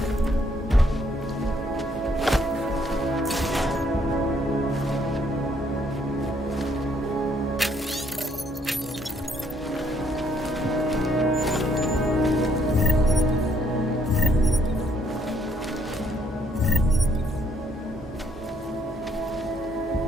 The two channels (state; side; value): normal; both; correlation 0.68